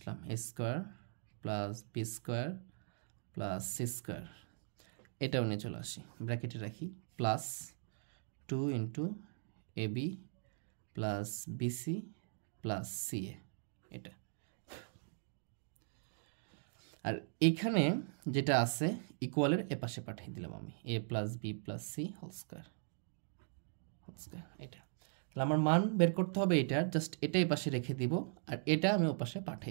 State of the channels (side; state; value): left; silent; digital silence